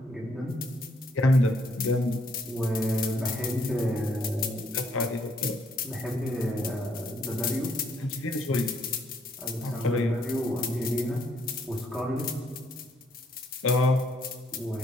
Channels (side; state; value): both; normal; correlation 0.70